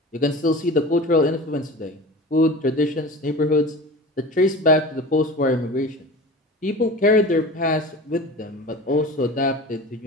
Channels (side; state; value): both; normal; correlation 0.35